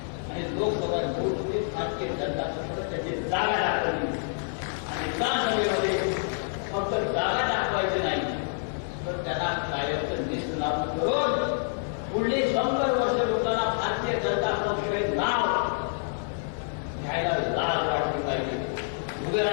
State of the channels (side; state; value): right; silent; 60 dB below the other